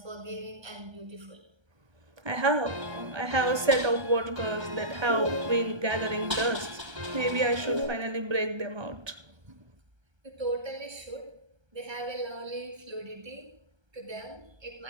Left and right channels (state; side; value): late; left; 1.3 ms